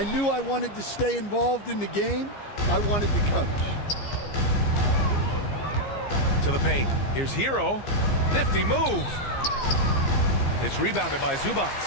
knew I wanted to stay involved in the game. I wanted to coach. To the paint. Here's Hero. Nifty move. It's rebounded by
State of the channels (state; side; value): late; right; 15 ms